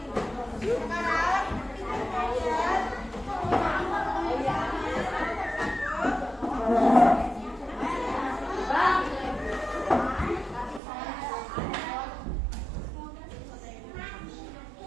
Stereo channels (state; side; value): drops out; left; at 10.8 s